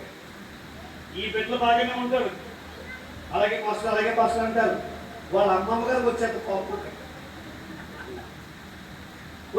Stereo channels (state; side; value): identical; both; correlation 1.00